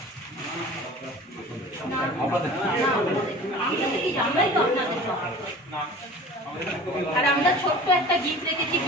আর আমরা ছোট্ট একটা গিফট রেখেছি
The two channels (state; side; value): normal; both; correlation 0.41